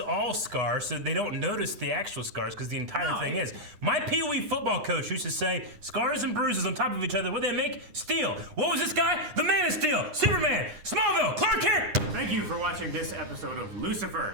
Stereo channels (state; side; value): late; left; 9.8 ms